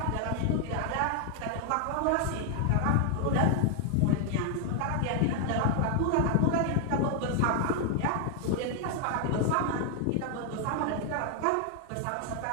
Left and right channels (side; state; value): both; different; correlation 0.00